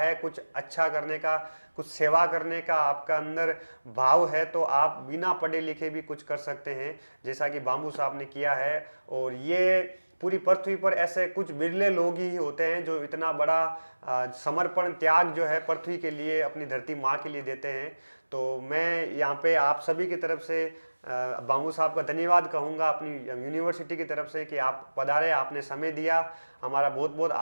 कुछ अच्छा करने का, कुछ सेवा करने का आपका अंदर भाव है, तो आप बिना पढ़े लिखे भी कुछ कर सकते हैं, जैसा कि बाबू साहब ने किया है। और ये पूरी पृथ्वी पर ऐसे कुछ बिरले लोग ही होते हैं जो इतना बड़ा समर्पण त्याग जो है पृथ्वी के लिए, अपनी धरती माँ के लिए देते हैं। तो मैं यहाँ पे आप सभी की तरफ से बाबू साहब का धन्यवाद कहूँगा, अपनी यूनिवर्सिटी की तरफ से, कि आप पधारे, आपने समय दिया, हमारा बहुत बहुत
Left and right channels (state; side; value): inverted; both; correlation -1.00